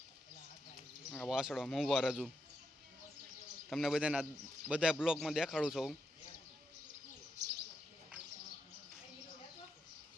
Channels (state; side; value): normal; both; correlation 0.83